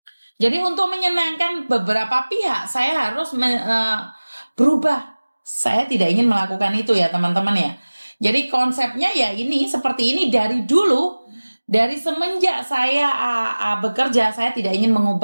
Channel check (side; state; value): both; inverted; correlation -1.00